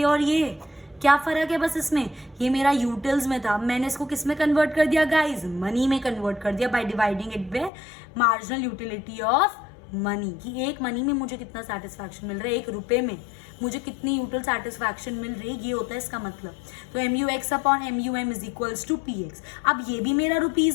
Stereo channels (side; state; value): right; drops out; at 7.7 s